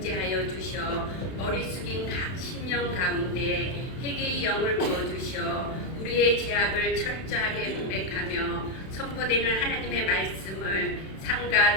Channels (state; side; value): late; right; 31 ms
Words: 주셔 머리 숙인 각 심령 가운데 회개의 영을 부어주셔 우리의 죄악을 철저하게 고백하며 선포되는 하나님의 말씀을 삼가